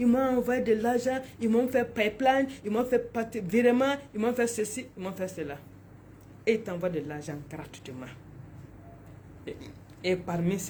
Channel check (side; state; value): both; identical; correlation 1.00